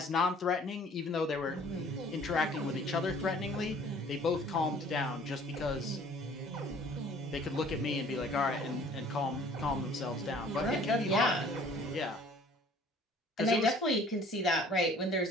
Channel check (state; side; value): normal; both; correlation 0.53